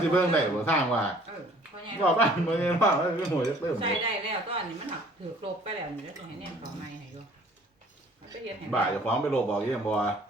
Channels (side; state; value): both; normal; correlation 0.54